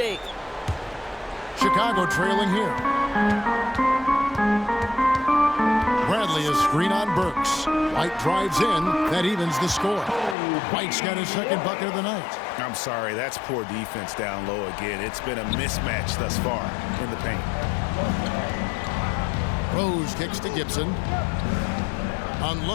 Chicago trailing here. Bradley is screen on Burks. White drives in. That evens the score. White's got his second bucket of the night. I'm sorry, that's poor defense down low again. It's been a mismatch thus far in the paint. Rose kicks to Gibson.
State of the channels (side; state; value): right; drops out; at 10.4 s